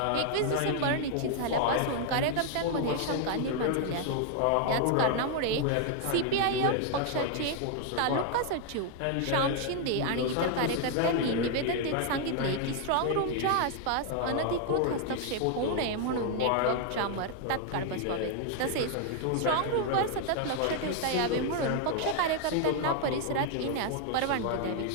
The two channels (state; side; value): different; both; correlation 0.00